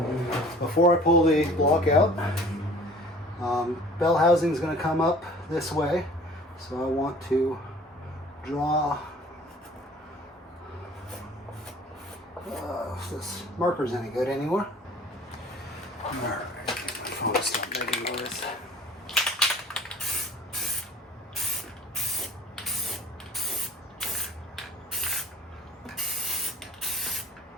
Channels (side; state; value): both; normal; correlation 0.48